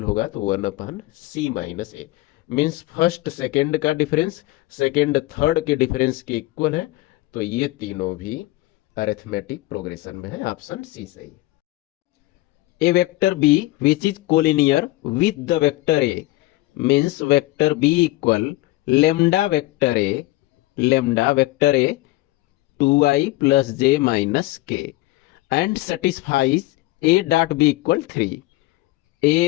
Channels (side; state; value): right; quieter; 18.7 dB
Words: होगा तो 1 c माइनस ए, मीन्स फर्स्ट सेकेंड का डिफरेंस सेकेंड थर्ड के डिफरेंस के इक्वल है, तो ये तीनों भी अरिथमेटिक प्रोग्रेशन में है। ऑप्शन सी सही है। A vector b which is collinear with the vector a means vector b equal lambda vector a 2i plus j minus k and satisfies a dot b equal 3.